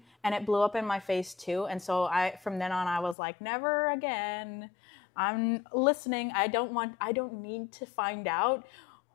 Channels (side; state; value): right; drops out; at 3.2 s